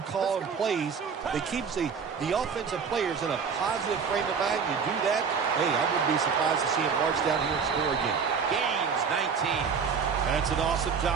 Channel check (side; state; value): left; quieter; 6.1 dB